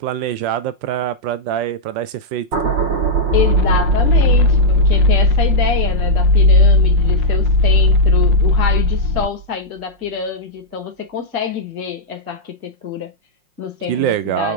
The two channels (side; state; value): left; late; 5.6 ms